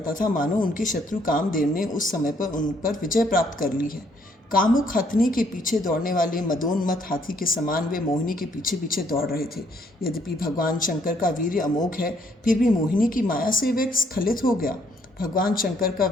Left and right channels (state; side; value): normal; both; correlation 0.68